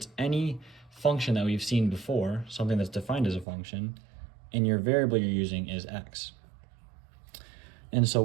any function that we've seen before, something that's defined as a function, and your variable you're using is x. And so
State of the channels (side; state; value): left; drops out; at 3.5 s